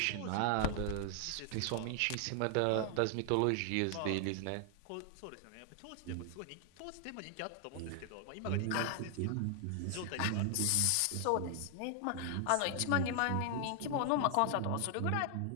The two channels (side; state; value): both; different; correlation 0.00